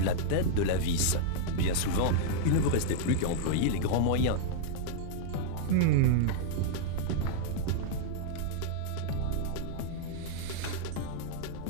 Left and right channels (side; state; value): both; different; correlation -0.01